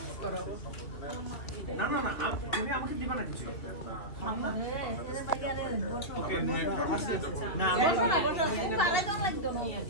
না না না, তুমি আমাকে দিবা না কিছু। ওকে না বসো না, বসো, খুব আগে দাও লাগতো না।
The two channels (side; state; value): right; late; 2.9 ms